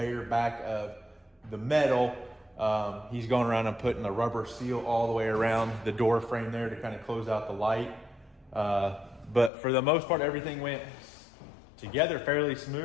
back of the metal. He's going around and putting the rubber seal all the way around the door frame there to kind of close out the light. But for the most part, everything went together fairly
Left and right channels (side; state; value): right; drops out; at 9.5 s